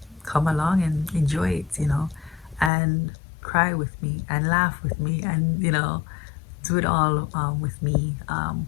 come along and enjoy it, and cry with me and laugh with me and, do it all with me,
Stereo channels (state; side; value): drops out; right; at 2.7 s